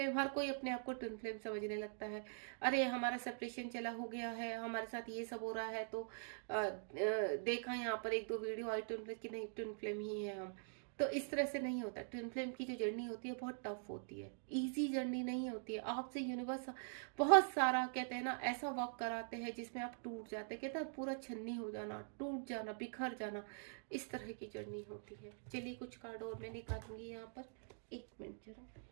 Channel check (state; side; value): silent; left; digital silence